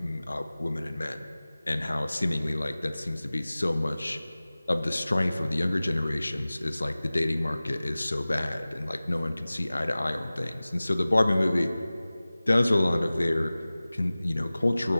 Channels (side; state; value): both; inverted; correlation -0.98